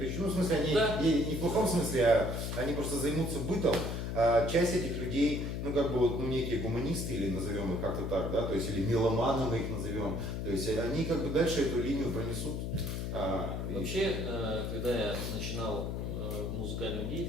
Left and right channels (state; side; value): noise; left; hum, 3 dB below the sound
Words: еще. Ну, в смысле, они не в плохом смысле, а они просто займутся бытом. А часть этих людей, ну, как бы вот, ну, некие гуманисты, или назовем их как-то так, да, то есть, или меломаны мы их назовем. То есть они как бы дальше эту линию пронесут. Вообще, когда я начинал музыкальную